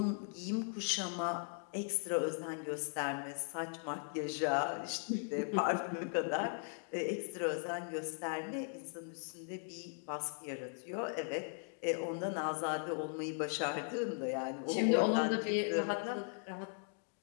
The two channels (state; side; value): silent; right; 52 dB below the other